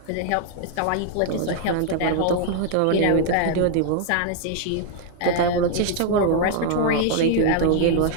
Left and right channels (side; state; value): both; different; correlation 0.00